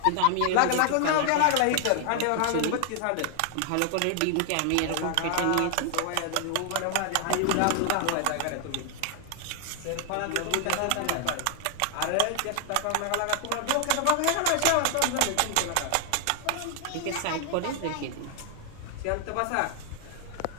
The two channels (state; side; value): different; both; correlation 0.00